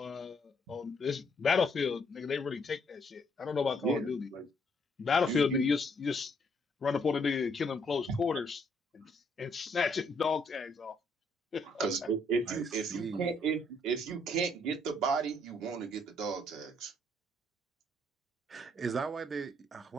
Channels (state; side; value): normal; both; correlation 0.70